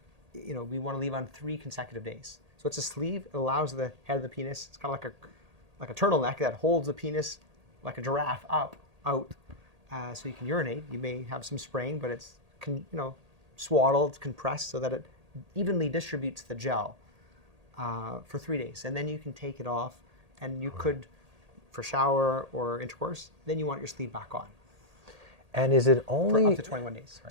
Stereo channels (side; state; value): left; late; 1.8 ms